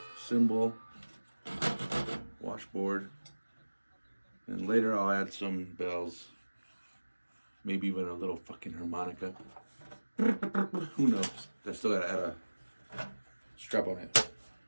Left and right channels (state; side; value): inverted; both; correlation -1.00